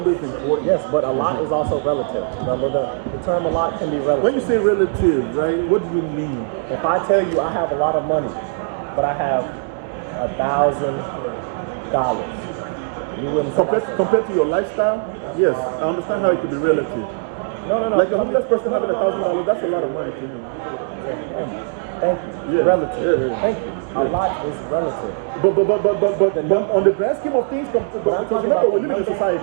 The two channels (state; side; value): silent; left; digital silence